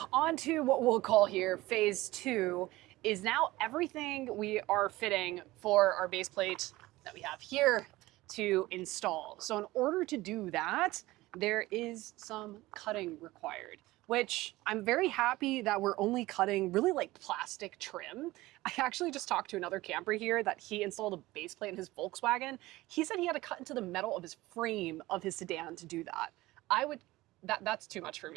on to what we'll call here phase 2 is now everything we are fitting for our base plate that we have here to install. So in order to do that, there is some cutting required, which I'm very happy that we're only cutting really like plastic trim. I actually just talked to another camper here that he installed a base plate in his Volkswagen. He said he had to cut into the metal of his frame of his sedan to do that. That's too much for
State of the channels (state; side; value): quieter; left; 18.7 dB